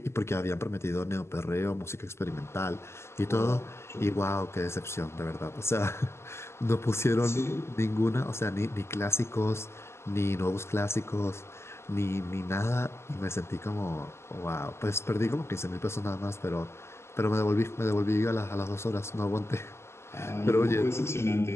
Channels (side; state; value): right; late; 0.13 ms